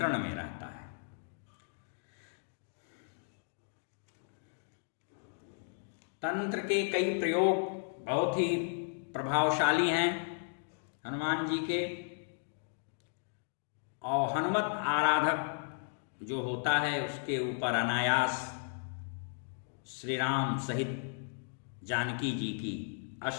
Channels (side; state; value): right; silent; digital silence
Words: में रहता है। तंत्र के कई प्रयोग बहुत ही प्रभावशाली हैं हनुमान जी के, और हनुमत आराधक जो होता है उसके ऊपर अनायास श्री राम सहित जानकी जी की